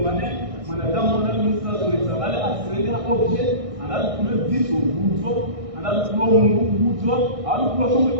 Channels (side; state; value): left; late; 1.6 ms